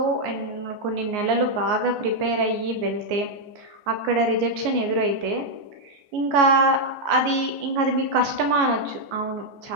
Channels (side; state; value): left; late; 14 ms